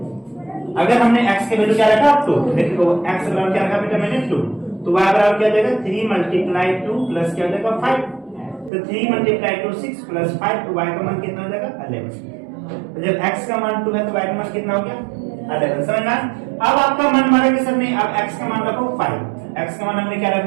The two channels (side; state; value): left; drops out; at 8.7 s